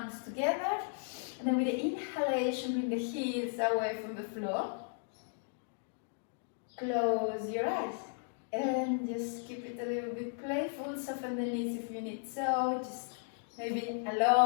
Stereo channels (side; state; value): right; silent; digital silence